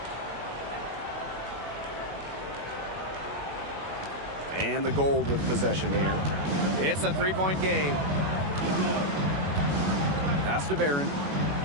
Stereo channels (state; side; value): late; left; 21 ms